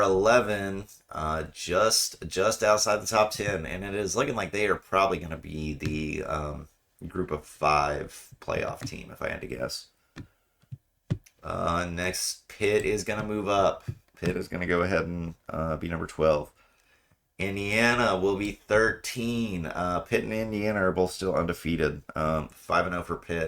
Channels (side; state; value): both; identical; correlation 1.00